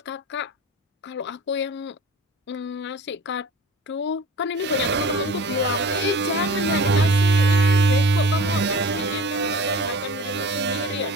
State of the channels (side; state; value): both; normal; correlation 0.41